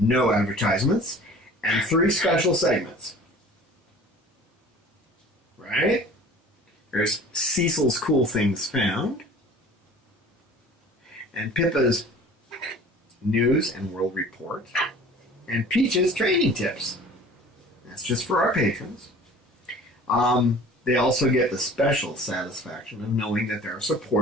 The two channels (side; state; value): both; normal; correlation 0.45